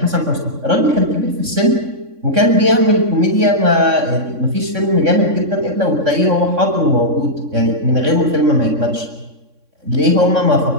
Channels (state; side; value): late; left; 3.6 ms